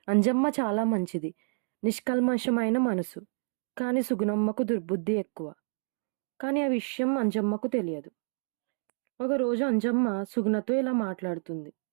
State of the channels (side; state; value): left; silent; digital silence